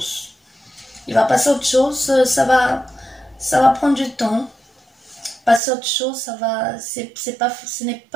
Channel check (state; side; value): drops out; left; at 5.6 s